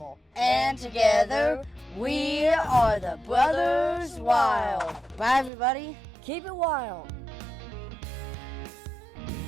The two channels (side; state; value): left; drops out; at 5.5 s